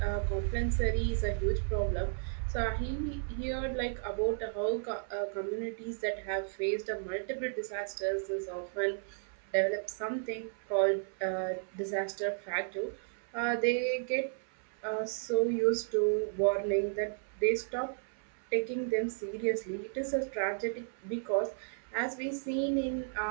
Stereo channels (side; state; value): left; silent; 55 dB below the other